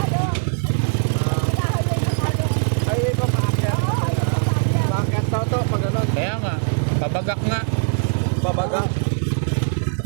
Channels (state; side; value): silent; left; digital silence